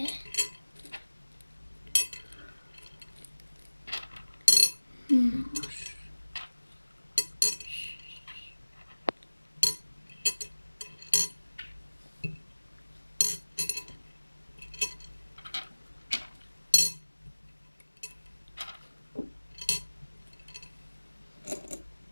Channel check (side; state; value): both; inverted; correlation -1.00